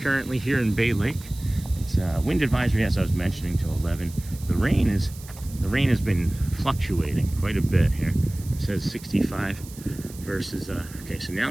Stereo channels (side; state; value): right; noise; hiss, 18 dB below the sound